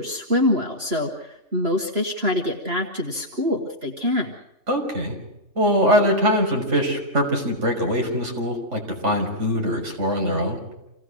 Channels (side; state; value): left; late; 3.0 ms